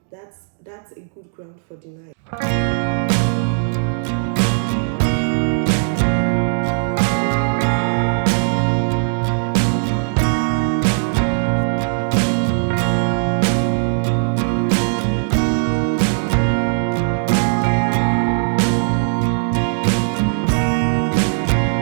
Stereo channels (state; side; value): silent; left; digital silence